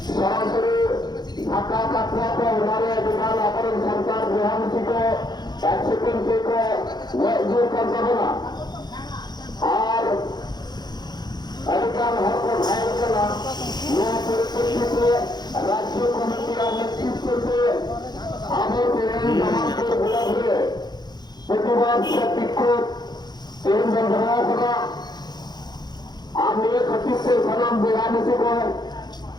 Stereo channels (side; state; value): right; late; 0.20 ms